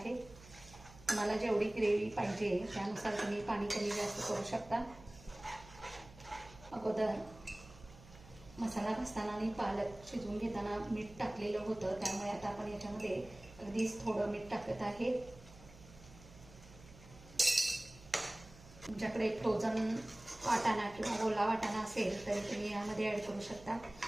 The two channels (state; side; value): noise; right; hum, 20 dB below the sound